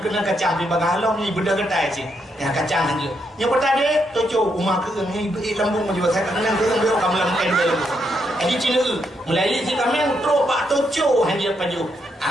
kacang di bagalong ni benda kedai sih. Yang kacang saja. Yang pertama tojo rumah ke ni lambung juga saya kena ke dia kamu lambung dia. Jadi Cina Melayu si kami tro pak tojo hanya paju.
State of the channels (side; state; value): both; normal; correlation 0.79